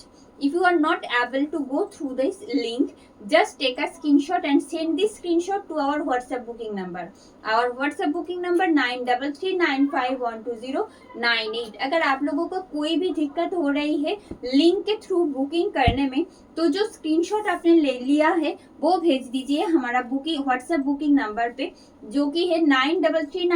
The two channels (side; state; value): both; identical; correlation 1.00